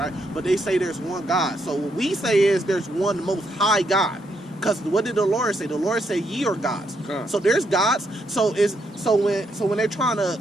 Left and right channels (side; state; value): both; normal; correlation 0.77